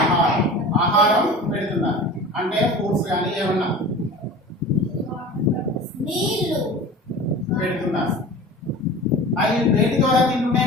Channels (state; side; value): normal; both; correlation 0.37